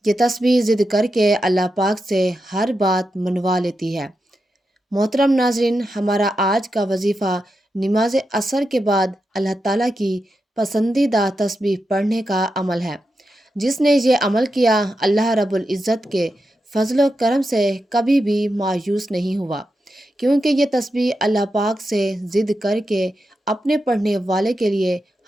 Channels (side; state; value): both; normal; correlation 0.88